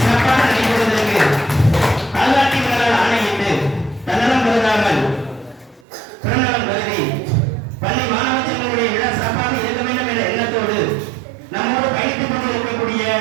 நடைபெறுவதற்கு பாதுகாப்பினரால் ஆணையிட்டு தன்னலம் கருதாமல் பிறநலம் கருதி பள்ளி மாணவ செல்வங்களுடைய விழா சிறப்பாக இருக்க வேண்டும் என்ற எண்ணத்தோடு நம்மோடு பயணித்துக் கொண்டிருக்கக்கூடிய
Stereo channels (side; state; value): left; drops out; at 5.9 s